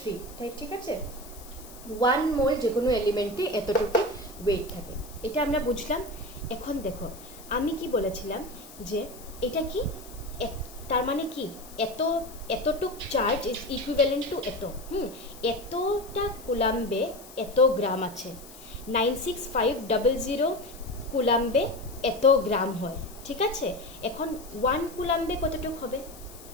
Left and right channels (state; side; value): noise; left; hiss, 18 dB below the sound